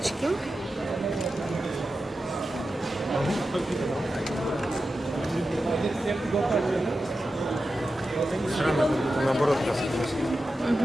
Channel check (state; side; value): normal; both; correlation 0.91